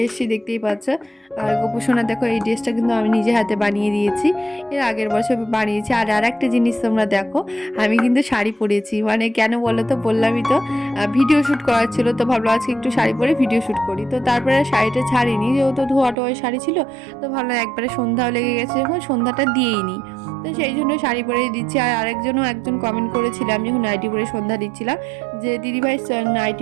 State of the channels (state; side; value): drops out; left; at 16.2 s